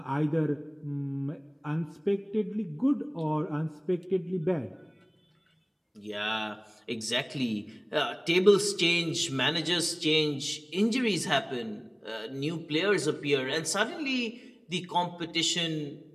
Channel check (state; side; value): identical; both; correlation 1.00